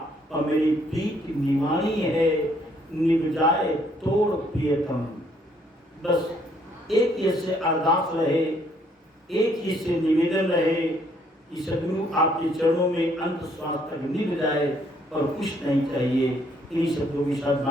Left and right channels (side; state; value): both; normal; correlation 0.67